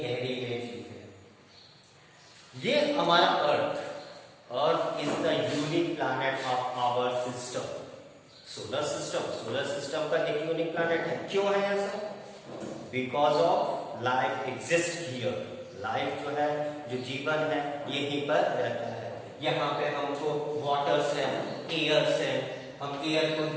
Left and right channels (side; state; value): both; identical; correlation 1.00